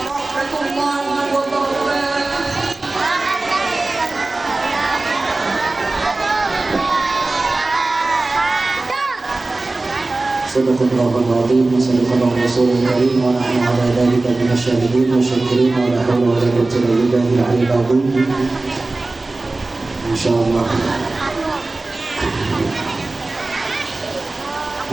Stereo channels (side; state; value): left; quieter; 3.2 dB